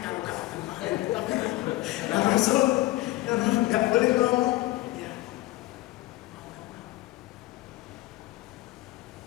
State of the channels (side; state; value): right; quieter; 18.2 dB